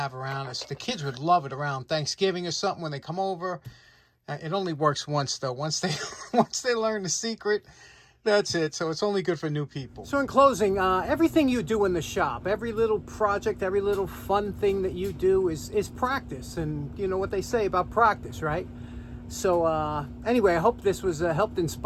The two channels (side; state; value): both; identical; correlation 1.00